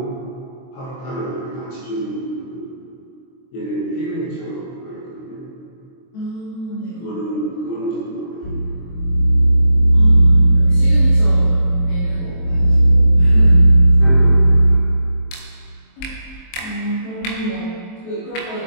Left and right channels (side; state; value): right; late; 23 ms